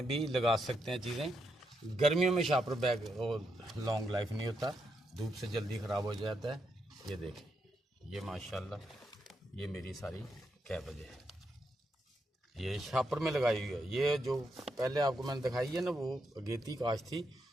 भी लगा सकते हैं चीज़ें। गर्मियों में शापर बैग लॉन्ग लाइफ नहीं होता, धूप से जल्दी ख़राब हो जाता है। ये देखें ये माशाल्लाह ये मेरी सारी कैबेज है, ये शापर में लगाई हुई है। ये जो पहले आपको मैंने दिखाई है ना वो अगेती काश थी,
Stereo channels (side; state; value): both; normal; correlation 0.81